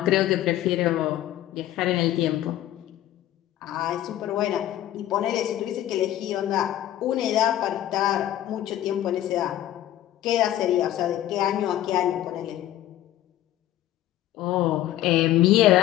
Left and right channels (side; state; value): right; quieter; 13.2 dB